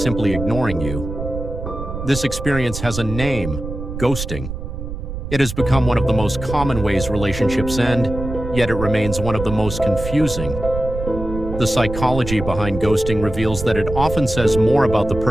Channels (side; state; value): right; noise; rumble, 7 dB below the sound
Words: ignoring you? This experience has a name: ghosting. It has become one of the most common ways relationships end, yet it remains one of the most confusing. The psychology behind ghosting reveals that it often says more about the